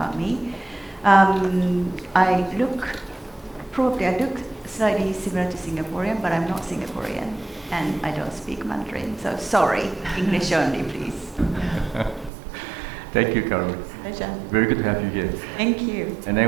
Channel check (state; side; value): drops out; left; at 12.3 s